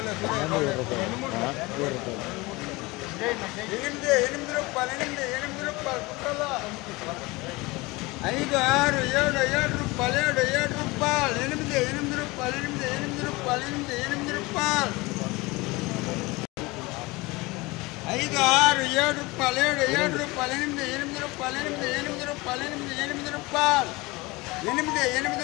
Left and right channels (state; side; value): quieter; right; 23.0 dB